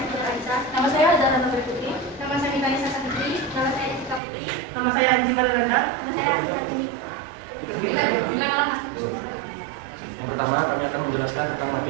Raisa. Nama saya Zahra Nurul Putri. Nama saya Nikanya Sasa Putri. Nama saya Jessica Putri. Nama saya Anji Balilanda. Nama saya Atika Tini. Yang pertama, kami akan menjelaskan tentang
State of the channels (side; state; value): left; drops out; at 4.2 s